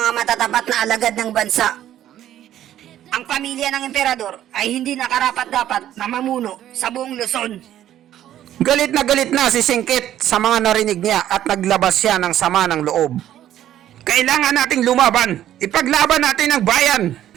matatapat na alagad ng bansa. Ang pamilya ng emperador ay hindi nakarapat-dapat na mamuno sa buong Luzon. Galit na si Singkit sa mga narinig niya at naglabas siya ng sama ng loob. Kailangan nating lumaban. Ipaglaban natin ang bayan.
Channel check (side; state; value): left; quieter; 11.9 dB